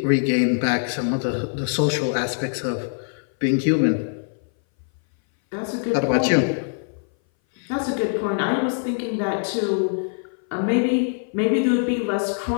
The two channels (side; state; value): right; silent; 59 dB below the other